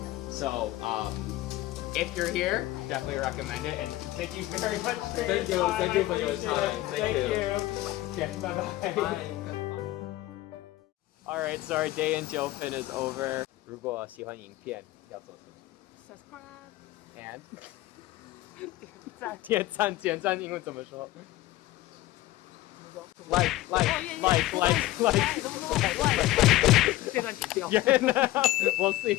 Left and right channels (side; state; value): right; quieter; 16.7 dB